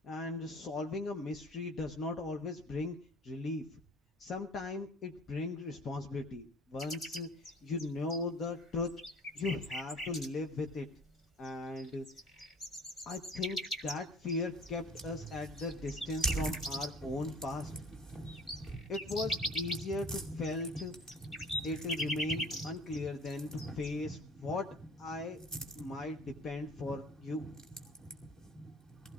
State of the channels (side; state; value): both; normal; correlation 0.47